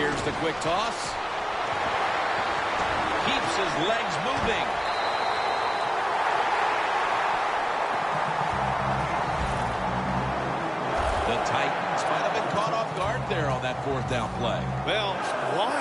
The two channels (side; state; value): both; identical; correlation 1.00